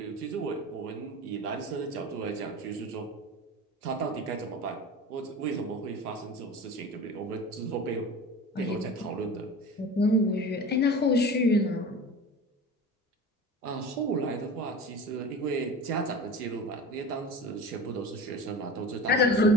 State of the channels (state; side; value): normal; both; correlation 0.34